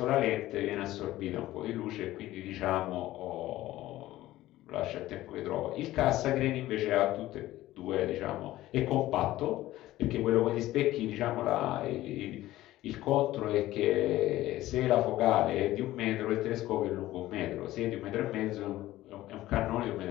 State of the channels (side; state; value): right; quieter; 15.7 dB